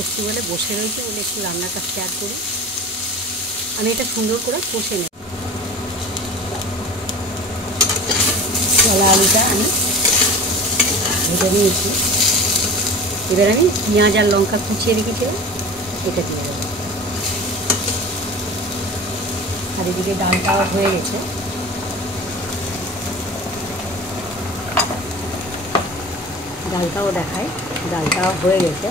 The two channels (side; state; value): both; normal; correlation 0.36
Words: এসেছি বলে বসে রয়েছি বলে একটু রান্নাটা শেয়ার করি। আমি এটা সুন্দর করে কষে নেব। কলা আলুটা আমি ভেজে নিয়েছি। এবার আমি পেঁয়াজ আর লঙ্কা কুচিয়ে রেখেছিলাম, এটা দিয়ে দেবো। আর এদিকে ডালটাও হয়ে গেছে। ডালটাও দেখায়, ডালটাও হয়ে গেছে।